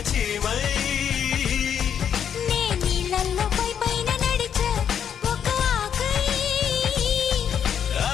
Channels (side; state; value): right; quieter; 8.4 dB